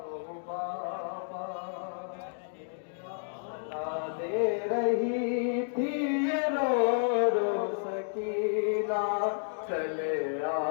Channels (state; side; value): silent; right; digital silence